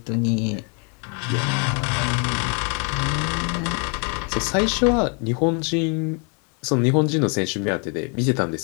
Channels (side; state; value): right; quieter; 37.2 dB